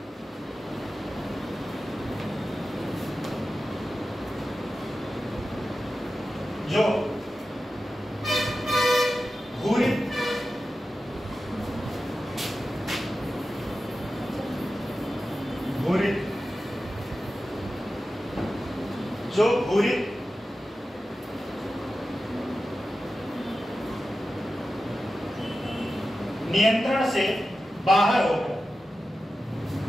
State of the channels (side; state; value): both; normal; correlation 0.93